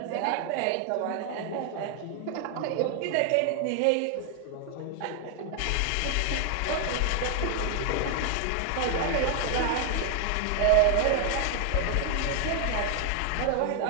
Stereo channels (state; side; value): different; both; correlation 0.00